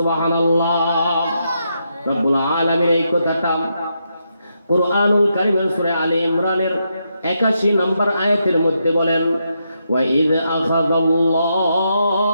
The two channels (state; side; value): inverted; both; correlation -0.81